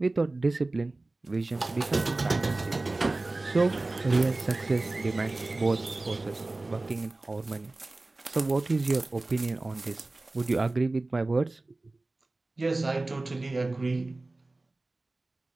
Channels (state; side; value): quieter; left; 3.1 dB